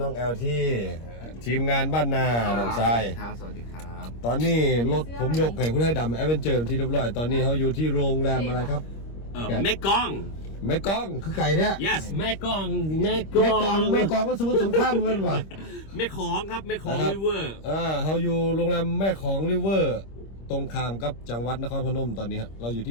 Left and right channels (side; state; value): right; late; 26 ms